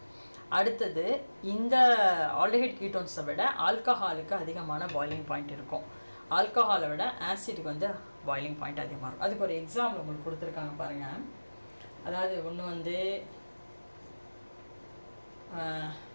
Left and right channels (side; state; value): both; inverted; correlation -1.00